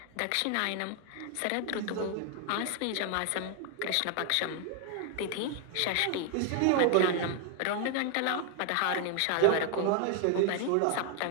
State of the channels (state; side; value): different; both; correlation 0.00